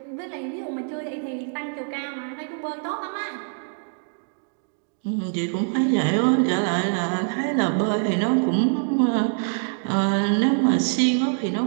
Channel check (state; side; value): silent; left; 60 dB below the other